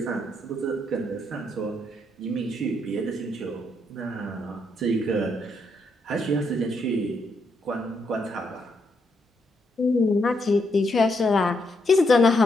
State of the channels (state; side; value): normal; both; correlation 0.77